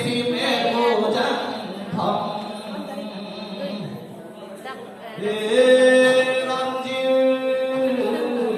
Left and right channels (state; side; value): identical; both; correlation 1.00